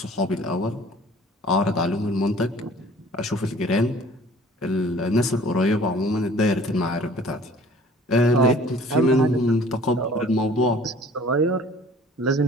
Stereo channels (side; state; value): both; normal; correlation 0.50